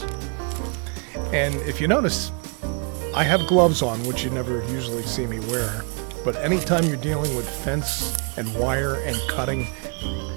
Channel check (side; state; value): left; quieter; 36.8 dB